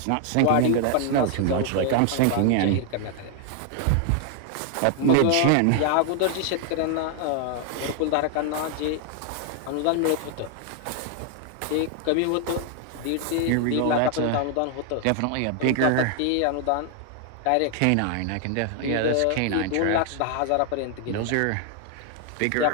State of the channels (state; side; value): different; both; correlation 0.00